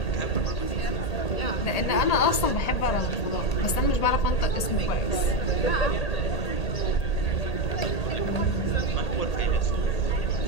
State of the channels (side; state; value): right; late; 1.8 ms